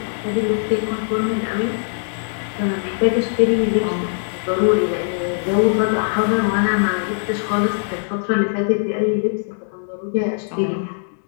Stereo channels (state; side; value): silent; right; digital silence